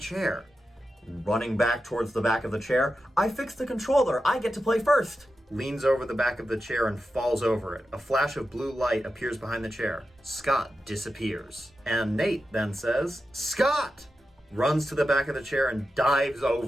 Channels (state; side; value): normal; both; correlation 0.91